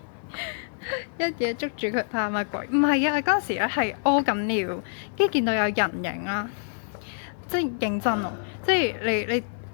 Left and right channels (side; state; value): right; silent; digital silence